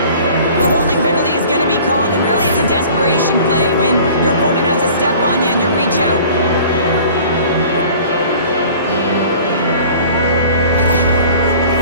The holding penalty is going to be called, and really it's a desperation play when your opponent has a step on you and you reach out.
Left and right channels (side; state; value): both; inverted; correlation -0.47